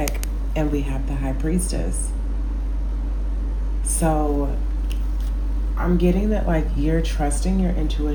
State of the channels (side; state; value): both; identical; correlation 1.00